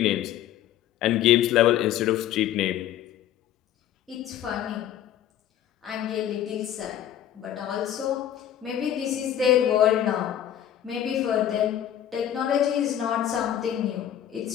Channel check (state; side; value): quieter; right; 11.1 dB